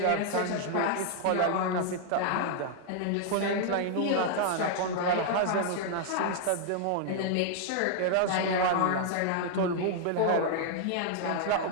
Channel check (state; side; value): different; both; correlation 0.00